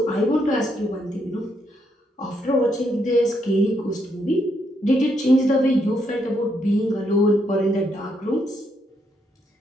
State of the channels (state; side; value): normal; both; correlation 0.76